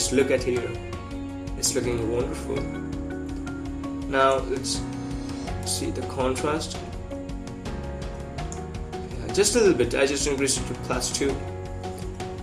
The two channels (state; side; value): identical; both; correlation 1.00